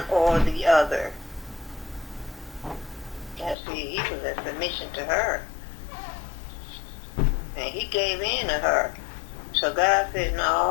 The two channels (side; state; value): right; drops out; at 3.6 s